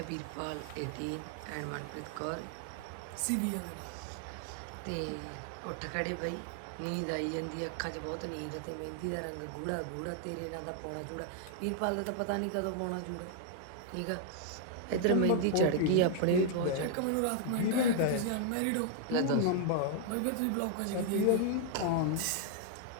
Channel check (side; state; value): both; different; correlation 0.00